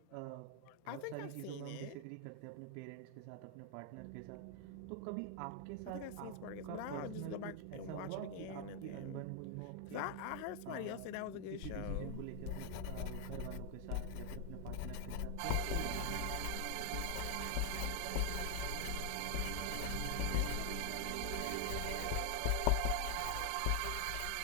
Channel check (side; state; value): both; different; correlation 0.00